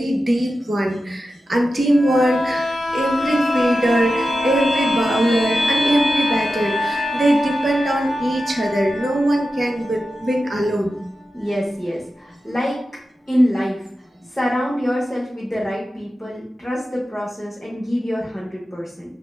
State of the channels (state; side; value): normal; both; correlation 0.92